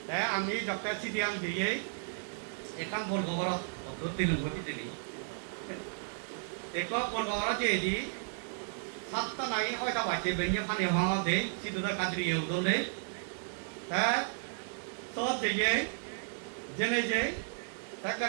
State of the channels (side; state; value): left; silent; digital silence